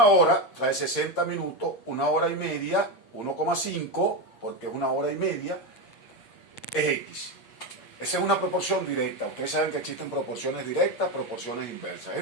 hora trae 60 minutos, una hora y media, 1,5, porque es una hora y media, es X. Esa es una proporción directa. Ustedes saben que existen proporciones directas, proporciones inversas.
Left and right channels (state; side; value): late; right; 8.7 ms